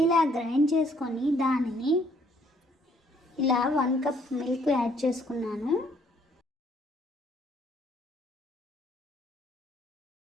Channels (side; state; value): both; normal; correlation 0.65